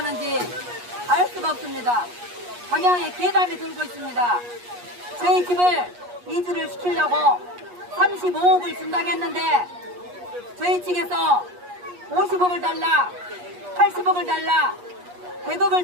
알 수가 없습니다. 방향에 괴담이 돌고 있습니다. 저희 집을 이주를 시키려고 35억을 준다고 했는데 저희 측에서 50억을 달라, 80억을 달라,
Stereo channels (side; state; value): left; late; 8.3 ms